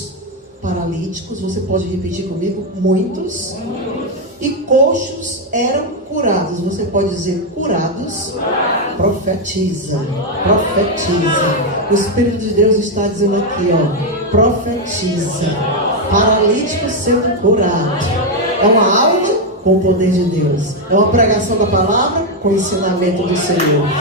paralíticos, você pode repetir comigo? Muitos. E coxos eram curados. Você pode dizer curados? Profetiza. Profetiza. O Espírito de Deus está dizendo aqui, ó. Profetiza. Paralítico sendo curado. É uma aula com o poder de Deus. É uma pregação da palavra com o ensinamento do Senhor.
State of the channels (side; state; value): both; normal; correlation 0.03